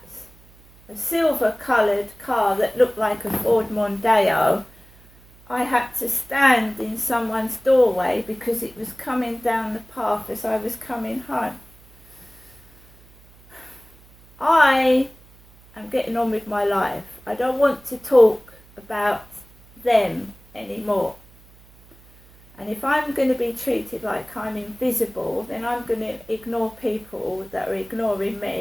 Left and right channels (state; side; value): noise; right; hum, 26 dB below the sound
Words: A silver coloured car that looked like a Ford Mondeo. I had to stand in someone's doorway because it was coming down the path as I was coming home. I am getting on with my life. I don't want to talk about them anymore. And if I'm going to be treated like I'm invisible, then I'm going to ignore people that are ignoring